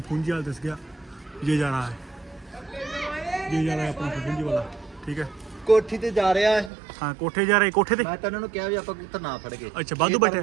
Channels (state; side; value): drops out; left; at 6.7 s